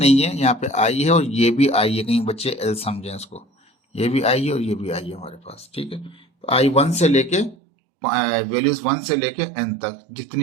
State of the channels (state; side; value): drops out; left; at 7.6 s